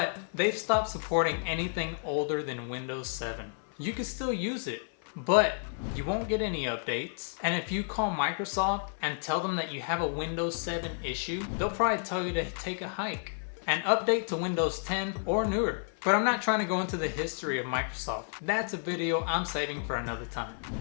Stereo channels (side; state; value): right; silent; 56 dB below the other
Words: they've stopped supporting anything older than Windows 7. You can still use it, but you won't get any updates. And if you call Microsoft and tell them that you have a Windows 7 issue, they'll probably tell you to take a hike and update to Windows 10 or newer. But I'm not trying to go into the history of Microsoft. That's a video I'm saving for another time.